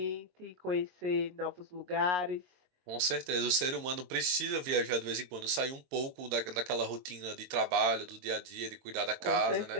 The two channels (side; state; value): left; late; 22 ms